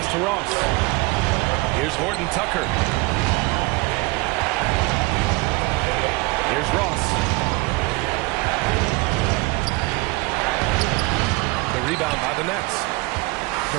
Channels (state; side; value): quieter; left; 24.4 dB